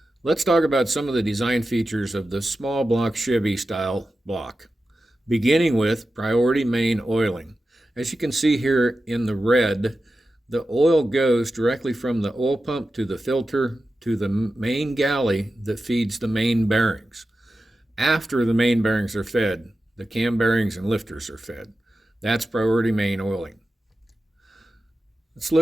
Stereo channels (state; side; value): normal; both; correlation 0.92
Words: Let's talk about some of the design features of the small block Chevy style block, beginning with priority main oiling. As you can see here in the red, the oil goes directly from the oil pump to the filter to the main galley that feeds the main bearings. After the main bearings are fed, the cam bearings and lifters are fed. That's priority main oiling. Let's